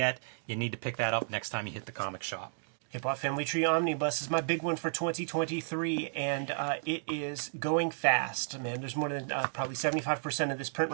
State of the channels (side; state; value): left; silent; digital silence